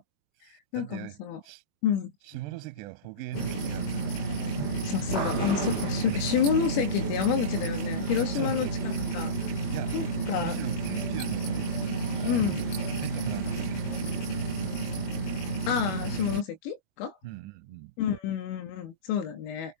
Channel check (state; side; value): late; right; 21 ms